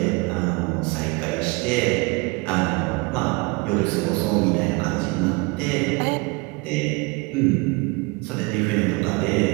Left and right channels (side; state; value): left; quieter; 27.1 dB